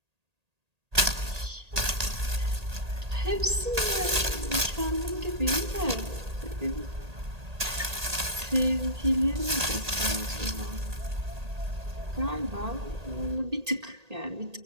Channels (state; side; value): late; left; 1.8 ms